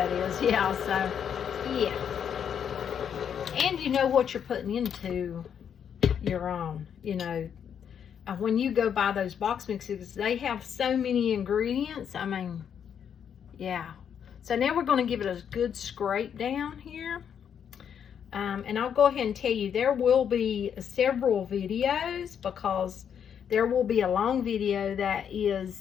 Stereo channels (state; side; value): quieter; right; 8.2 dB